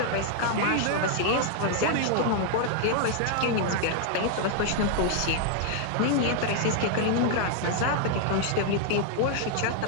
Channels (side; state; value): both; different; correlation 0.00